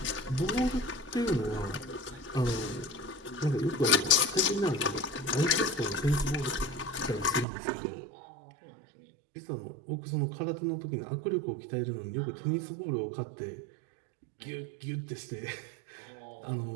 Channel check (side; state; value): left; drops out; at 7.5 s